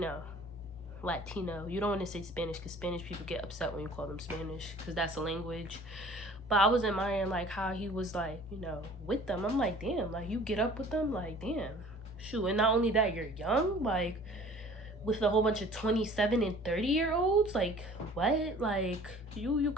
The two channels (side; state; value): both; normal; correlation 0.49